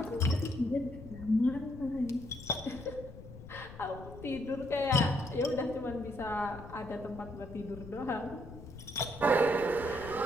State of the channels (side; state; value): left; noise; rumble, 15 dB below the sound